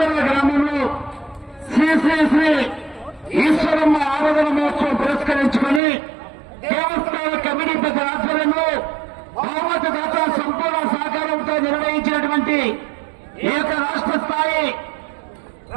గ్రామంలో శ్రీ శ్రీ శ్రీ ఈశ్వరమ్మ ఆరాధన మహోత్సవం పురస్కరించుకుని దేవస్థాన కమిటీ పెద్ద ఆధ్వర్యంలో బహుమతి దాత సంపూర్ణ సహకారంతో నిర్వహించినటువంటి ఏక రాష్ట్ర స్థాయి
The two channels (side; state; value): left; drops out; at 5.8 s